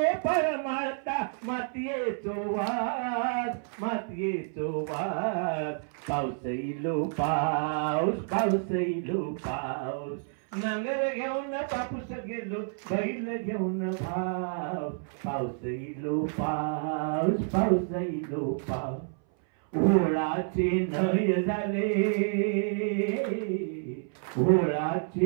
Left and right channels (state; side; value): silent; left; 58 dB below the other